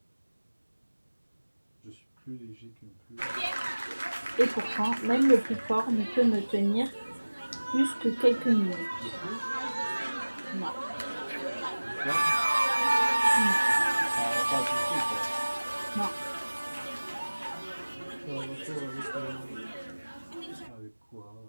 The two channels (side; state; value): both; inverted; correlation -1.00